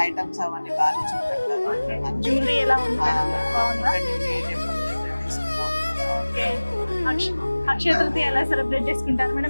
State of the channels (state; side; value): inverted; both; correlation -1.00